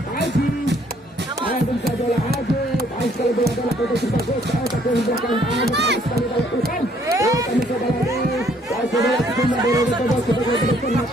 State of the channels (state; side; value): normal; both; correlation 0.64